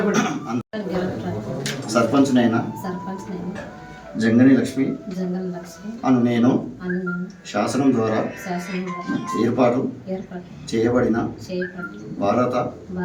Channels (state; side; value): identical; both; correlation 1.00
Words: సర్పంచ్నైనా జంగని లక్ష్మి అను నేను శాసనం ద్వారా ఏర్పాటు చేయబడిన భారత